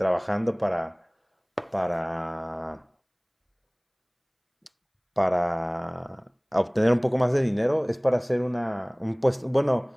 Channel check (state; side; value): identical; both; correlation 1.00